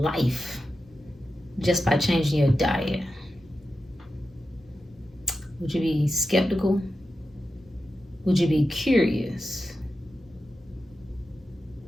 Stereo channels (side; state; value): both; normal; correlation 0.91